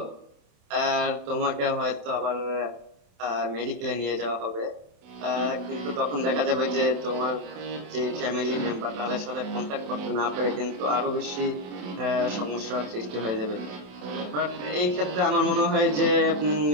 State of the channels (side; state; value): left; late; 27 ms